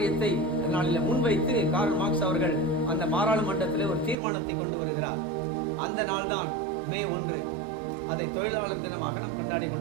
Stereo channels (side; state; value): left; drops out; at 4.2 s